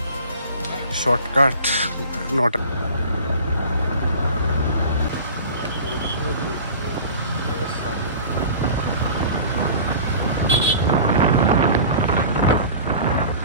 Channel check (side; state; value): both; inverted; correlation -0.39